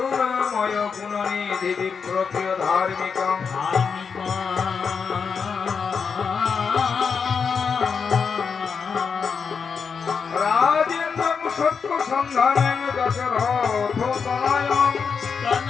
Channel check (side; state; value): right; quieter; 5.9 dB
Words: गुणनिधि विप्रप्रिय धार्मिकं राजेन्द्रं सत्य सन्धानं दशरथ तनयं